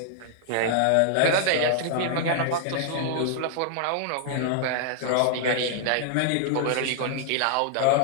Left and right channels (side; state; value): both; different; correlation -0.01